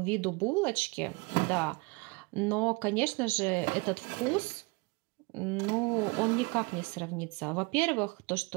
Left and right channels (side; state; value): left; quieter; 27.4 dB